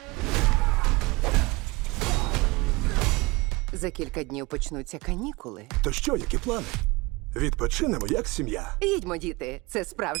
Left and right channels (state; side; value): quieter; left; 24.0 dB